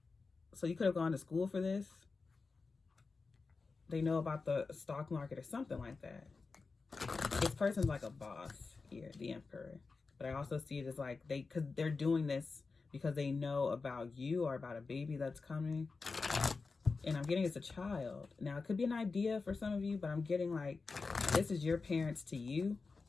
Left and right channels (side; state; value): right; quieter; 4.3 dB